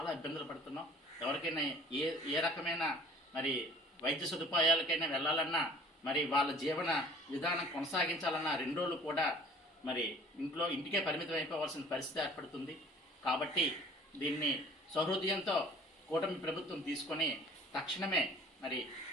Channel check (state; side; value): normal; both; correlation 0.49